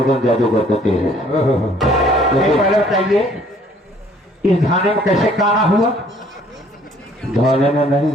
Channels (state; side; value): normal; both; correlation 0.59